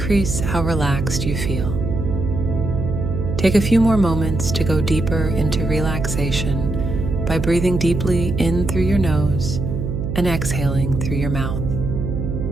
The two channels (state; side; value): noise; right; hum, 3 dB below the sound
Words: how relaxed you feel. Take a few more moments to go deeper into relaxation by breathing deeply in through your nose and exhaling through your mouth.